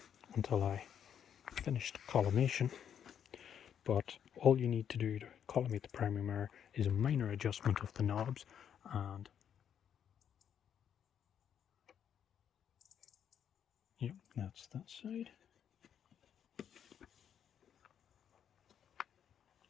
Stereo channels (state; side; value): quieter; right; 8.8 dB